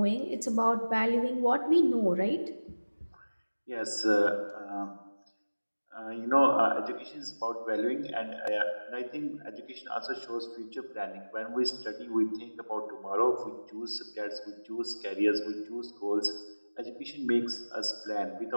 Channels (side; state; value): both; inverted; correlation -1.00